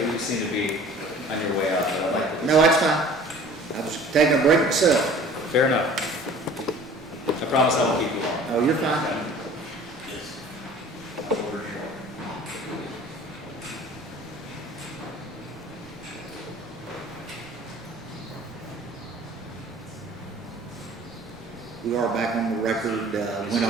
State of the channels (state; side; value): noise; right; rumble, 26 dB below the sound